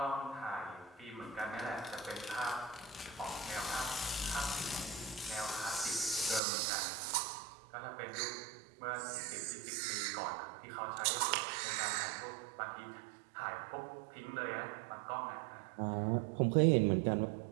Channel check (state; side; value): drops out; left; at 6.4 s